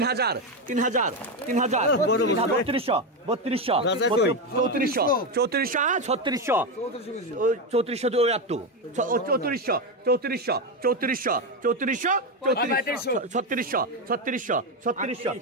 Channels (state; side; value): normal; both; correlation 0.11